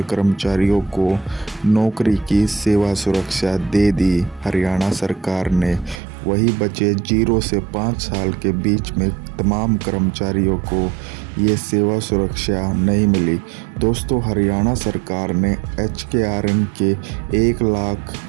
कर्मचारियों को नौकरी की सेवा सुरक्षा दे दी हरियाणा सरकार ने। वही बचे 0 से 5 साल के बीच में तमाम कर्मचारियों को ये सेवा सुरक्षा नहीं मिली। दोस्तों, हरियाणा सरकार ने एचकेआरएन के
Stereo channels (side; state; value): left; drops out; at 6.0 s